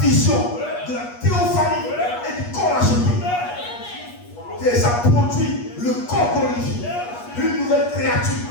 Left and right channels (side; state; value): right; late; 8.4 ms